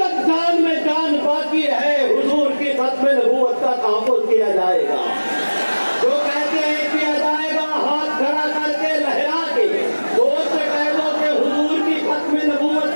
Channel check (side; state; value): both; inverted; correlation -1.00